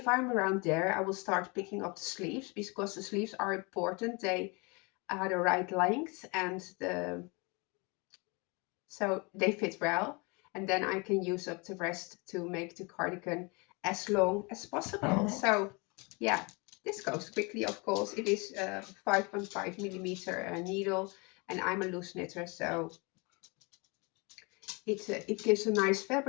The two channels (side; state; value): right; quieter; 29.1 dB